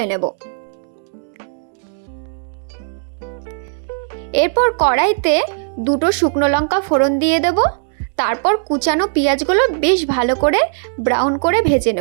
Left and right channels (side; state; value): left; silent; digital silence